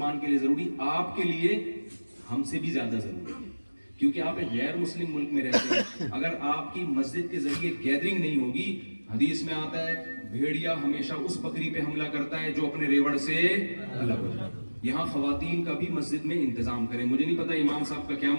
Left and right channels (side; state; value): both; inverted; correlation -1.00